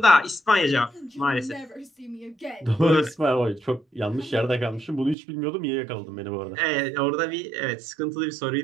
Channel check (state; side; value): drops out; left; at 5.2 s